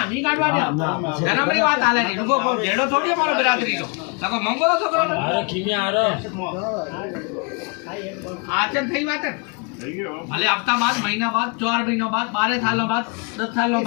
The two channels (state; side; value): quieter; right; 33.3 dB